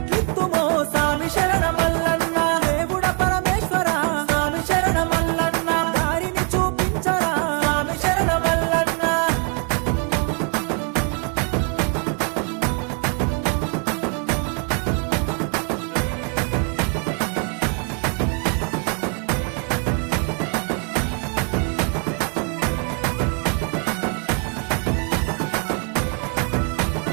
స్వామి శరణమల్లన్న. దేవుడ పరమేశ్వర స్వామి శరణమల్లన్న, దారిని చూపించరా స్వామి శరణమల్లన్న.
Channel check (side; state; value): left; quieter; 38.9 dB